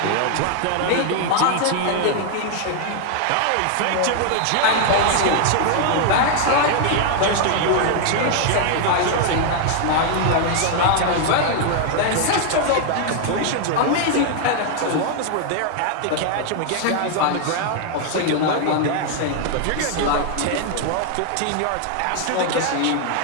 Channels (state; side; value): different; both; correlation 0.00